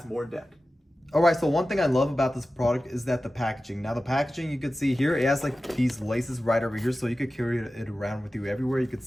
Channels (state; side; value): normal; both; correlation 0.95